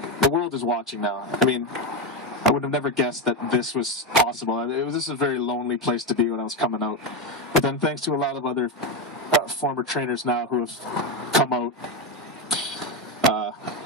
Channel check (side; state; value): both; normal; correlation 0.11